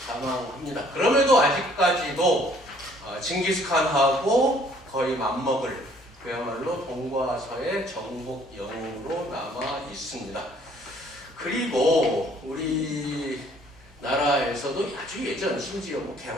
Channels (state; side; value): normal; both; correlation 0.60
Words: 그럼에도 아직까지도 징기스칸하고 거의 맞먹을 그야말로 동과 서의 정복 영웅으로 남아 있습니다. 그리고 우리 나라에서도 아주 예전 심지어